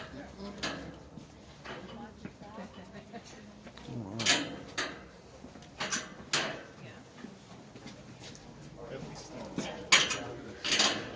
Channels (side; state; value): both; identical; correlation 1.00